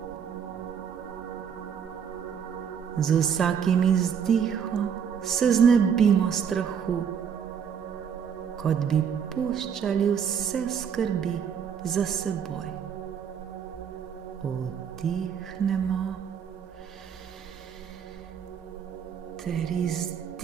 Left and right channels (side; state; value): left; quieter; 7.5 dB